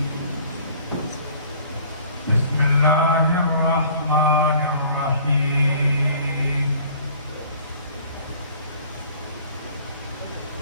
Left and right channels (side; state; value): both; inverted; correlation -0.52